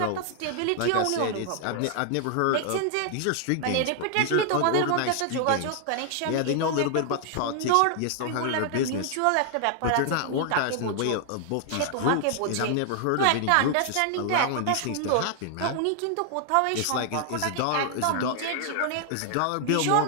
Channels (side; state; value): both; different; correlation 0.00